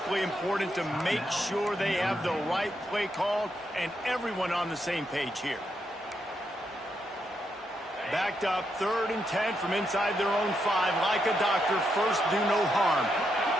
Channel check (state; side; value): normal; both; correlation 0.81